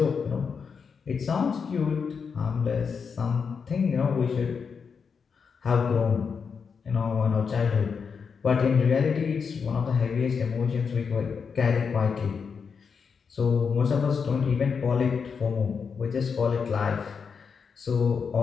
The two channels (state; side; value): quieter; right; 5.9 dB